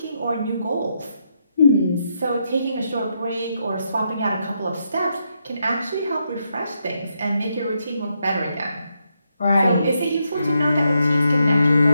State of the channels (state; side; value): inverted; both; correlation -0.80